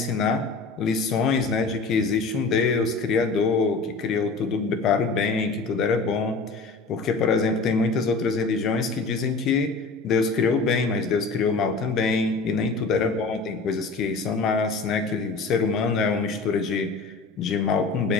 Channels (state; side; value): quieter; right; 4.0 dB